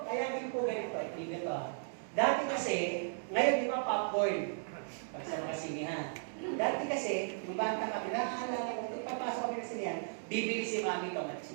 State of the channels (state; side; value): silent; left; digital silence